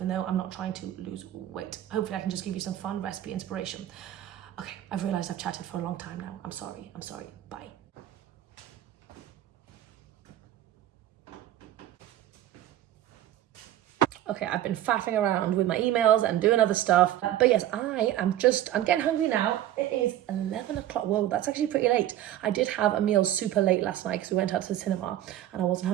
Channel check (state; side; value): quieter; left; 12.8 dB